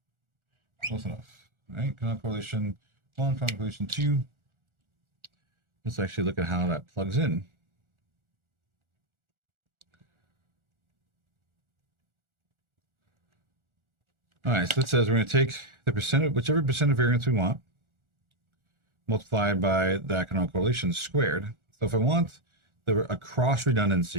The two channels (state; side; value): late; left; 1.4 ms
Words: Close enough. All right, canonical correlation 1, canonical correlation 2. Let's actually look at how that plugs in. All right, so it says we're going to take the percent of whichever percent of variance we want, multiplied by that canonical correlation squared. So if I want a cross